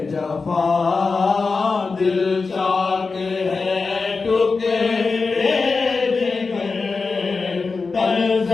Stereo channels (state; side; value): quieter; right; 4.4 dB